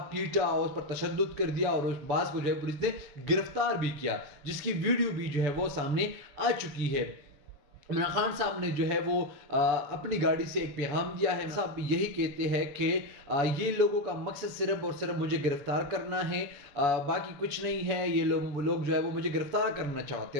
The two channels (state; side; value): late; left; 6.9 ms